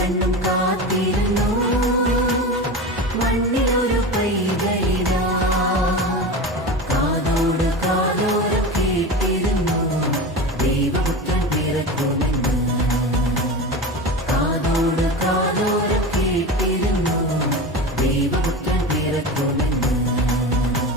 കാത്തിരുന്നു മണ്ണിലൊരു പൈതലിതാ കാതോട് കാതോരം കേട്ടിരുന്നു ദൈവപുത്രൻ പിറക്കുമെന്ന് കാതോട് കാതോരം കേട്ടിരുന്നു ദൈവപുത്രൻ പിറക്കുമെന്ന്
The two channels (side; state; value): both; normal; correlation 0.27